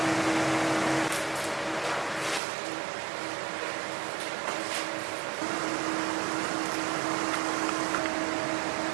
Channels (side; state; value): left; drops out; at 2.4 s